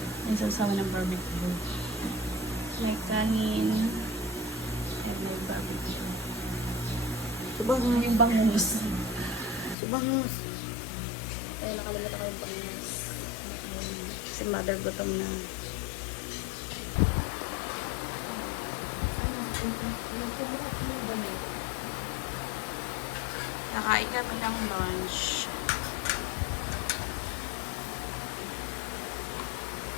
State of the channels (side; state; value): right; drops out; at 9.8 s